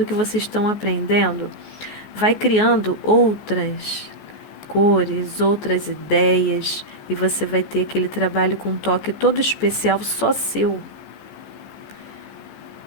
que vocês estão aprendendo, vai criando outras cores, outras ideias, e você vai ter aquele trabalho com um toque todo especial, só seu.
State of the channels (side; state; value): right; late; 14 ms